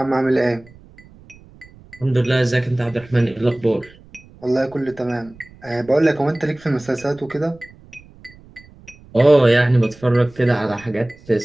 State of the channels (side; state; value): right; noise; rumble, 24 dB below the sound